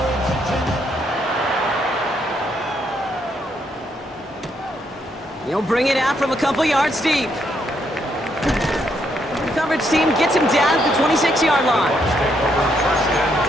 He'll bring it out from a couple yards deep. The coverage team gets him down at the 26-yard line.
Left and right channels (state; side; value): normal; both; correlation 0.75